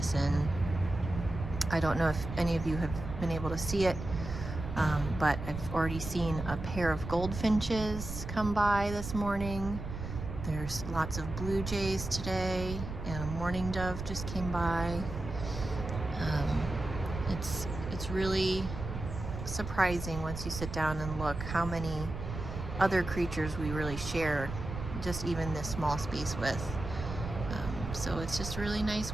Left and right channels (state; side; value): noise; right; rumble, 7 dB below the sound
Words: I don't know if any of you have been able to see it, but I've already seen a pair of goldfinches come by this morning. There's lots of blue jays today, and a mourning dove just came by. It's really surprising once you sit down and look how many other creatures we really share just even this small space with. So it's just a really nice